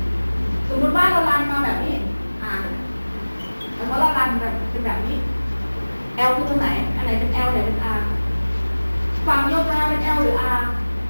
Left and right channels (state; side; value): inverted; both; correlation -1.00